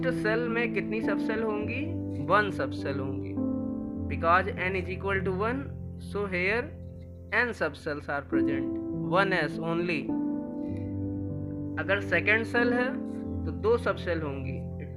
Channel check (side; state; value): both; identical; correlation 1.00